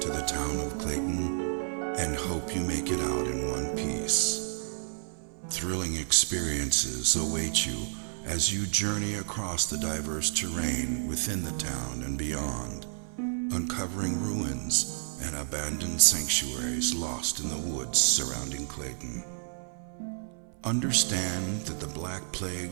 to the town of Clayton, and hope you make it out in one piece. Thrilling experiences await you as you journey across the diverse terrain within the town and beyond, uncovering ruins and abandoned sanctuaries lost in the woods surrounding Clayton. Understand that the Black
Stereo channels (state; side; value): silent; left; 57 dB below the other